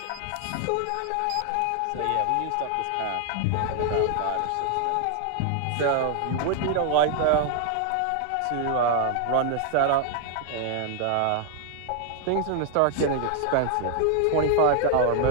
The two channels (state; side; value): different; both; correlation 0.00